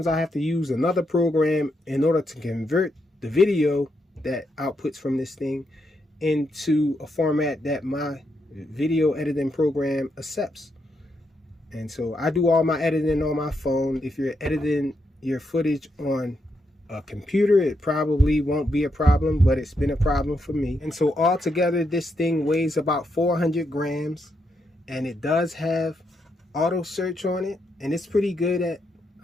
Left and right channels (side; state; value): both; normal; correlation 0.81